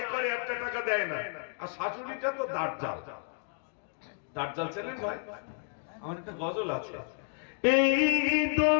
করে একটা টাকা দেয় না, আর শাশুড়িটা তো দাঁড়জাল। দাঁড়জাল ছেলে ভাই, আমার একটা গজল আছে, এই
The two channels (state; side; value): silent; right; 56 dB below the other